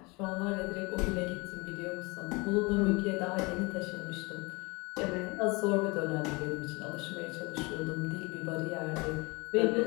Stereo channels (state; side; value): quieter; right; 26.4 dB